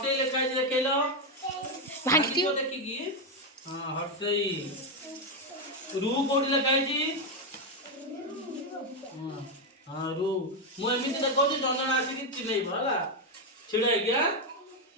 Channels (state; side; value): normal; both; correlation 0.06